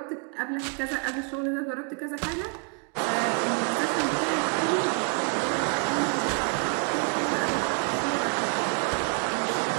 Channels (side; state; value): left; quieter; 38.4 dB